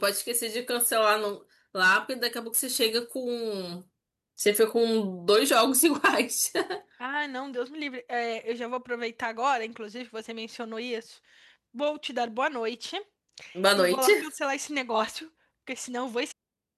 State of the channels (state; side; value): identical; both; correlation 1.00